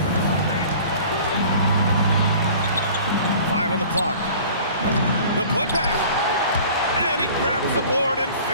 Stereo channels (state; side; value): inverted; both; correlation -0.46